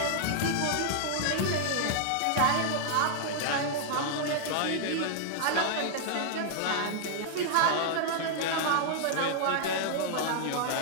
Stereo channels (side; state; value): both; different; correlation -0.01